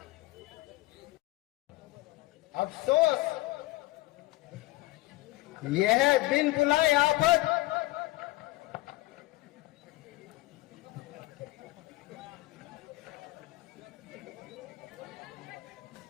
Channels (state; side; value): quieter; right; 19.3 dB